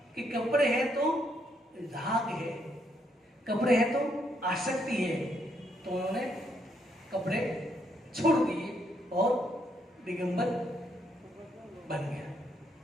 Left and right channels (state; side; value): normal; both; correlation 0.74